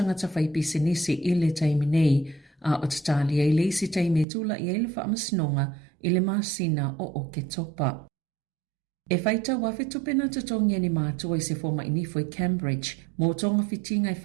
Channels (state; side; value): drops out; left; at 4.2 s